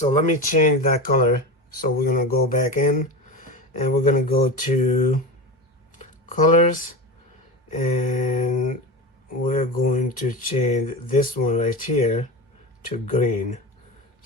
let me change that color. So we're gonna go back in, and we're gonna go to colors, and we're going to change this one right here to green.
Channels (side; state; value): both; normal; correlation 0.25